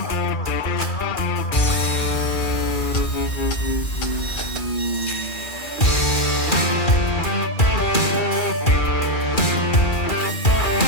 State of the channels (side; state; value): right; late; 2.4 ms